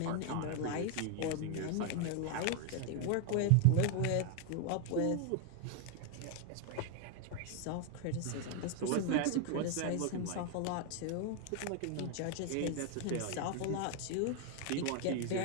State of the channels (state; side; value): different; both; correlation 0.01